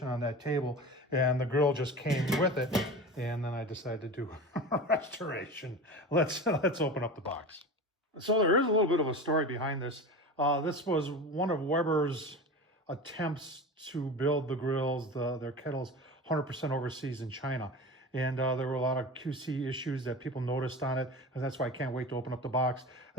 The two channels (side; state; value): both; normal; correlation 0.31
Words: on that table, and the grill just came with it. And then I decided to do a restoration. Let's open up the box. So there is a little bit of a story behind this. This was one of Weber's attempts to build the grills, their kettles, 100% overseas in China. And there were a lot of QC issues that people noticed on it, and that's why I can't wait to open up the box.